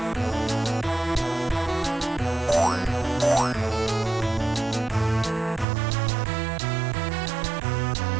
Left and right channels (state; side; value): drops out; left; at 5.7 s